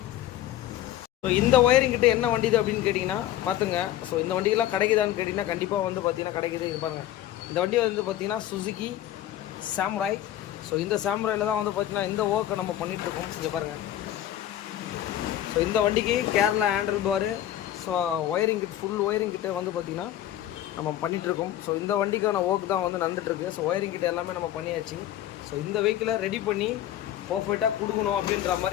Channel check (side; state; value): right; quieter; 12.7 dB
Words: ஸோ இந்த ஒயரிங் கிட்ட என்ன வண்டி இது அப்படின்னு கேட்டிங்கன்னா பார்த்துங்க. ஸோ இந்த வண்டிக்கெல்லாம் கிடைக்குதான்னு கேட்டிங்கன்னா கண்டிப்பாக வந்து பார்த்தீங்கன்னா கிடைக்குது. இது பாருங்கள், இந்த வண்டி வந்து பார்த்தீங்கன்னா சுசுகி சாமுராய். ஸோ இந்த சாமுராயில் தான் வந்து பார்த்தீங்கன்னா இந்த ஒர்க்கை நம்ம பண்ணிகிட்ருக்கோம். இங்கே பாருங்கள். ஸோ இந்த வண்டிக்கு Kerala handle bar, so wiring kit, full wiring கிட்ட வந்து பார்த்திங்கன்னா நம்ம பண்ணிகிட்ருக்கோம். ஸோ இந்த வண்டிக்கான ஒர்க் தான் வந்து நடந்துகிட்ருக்கு. ஸோ ஒயரிங் கிட்ட எல்லாமே நம்ம பண்ணியாச்சு. ஸோ இந்த வெஹிக்கிளை ரெடி பண்ணி பர்ஃபெக்டாக கொடுக்கணும் அப்படின்ற